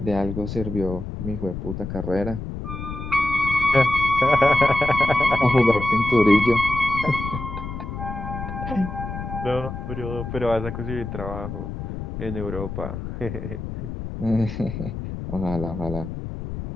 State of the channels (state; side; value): noise; left; rumble, 7 dB below the sound